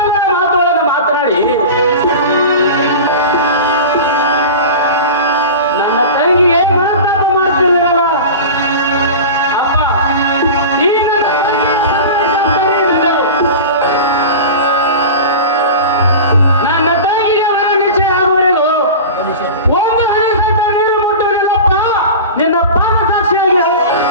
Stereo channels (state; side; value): inverted; both; correlation -0.31